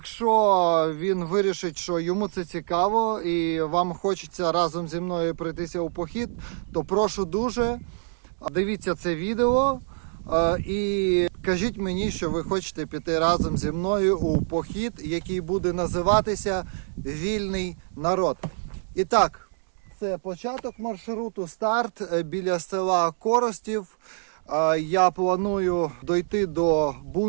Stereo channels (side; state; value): left; silent; digital silence